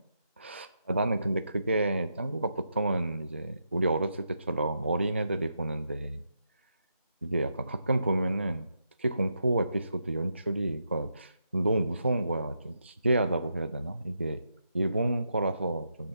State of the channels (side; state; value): both; inverted; correlation -0.82